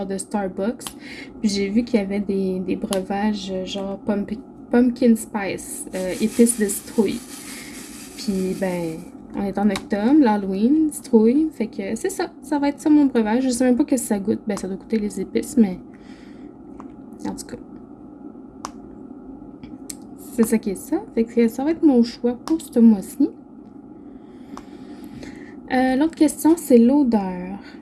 de Starbucks. Puis j'ai vu qu'il y avait des breuvages genre pumpkin spice, épices de citrouille. Puis ben, on est en octobre, l'Halloween, citrouille. Fait que c'est ça, ça va être ça mon breuvage. Je sais même pas que ça goûte. Ben, ça doit goûter les épices, mais en tout cas, c'est ça qui est ça. Fait que ça va être mon choix pour ce mois-ci. L'autre question, c'est l'odeur.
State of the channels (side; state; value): both; identical; correlation 1.00